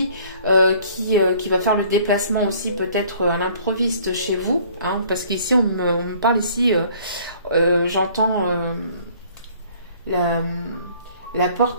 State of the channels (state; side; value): inverted; both; correlation -0.55